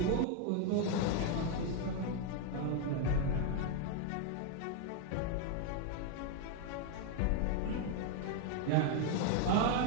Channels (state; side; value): different; both; correlation 0.01